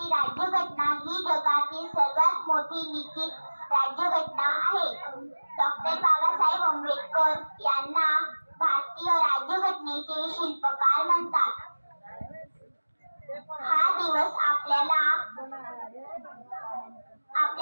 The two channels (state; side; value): inverted; both; correlation -1.00